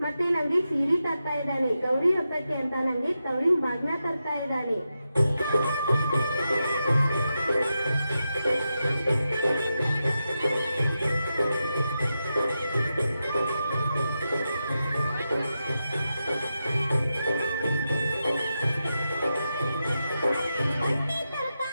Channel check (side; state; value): both; inverted; correlation -0.89